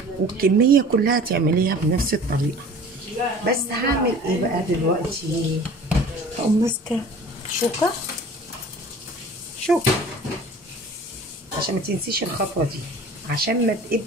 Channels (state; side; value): normal; both; correlation 0.45